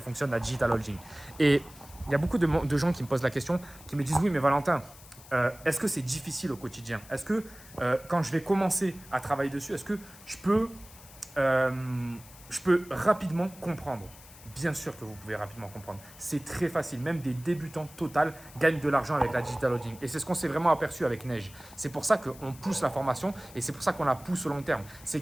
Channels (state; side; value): noise; left; hiss, 20 dB below the sound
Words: la digital holding. Et il y a beaucoup de gens qui me posent la question, qui me disent oui, mais Valentin, est-ce que c'est difficile au quotidien? Est-ce que quand je vais commencer à travailler dessus, est-ce que je peux rapidement comprendre? Bien sûr que vous pouvez rapidement comprendre. C'est très facile. Même des débutants total gagnent de l'argent avec la digital holding. Et c'est ce qu'on s'est vraiment aperçu avec Neige. C'est pour ça qu'on pousse la formation et c'est pour ça qu'on la pousse au long terme. C'est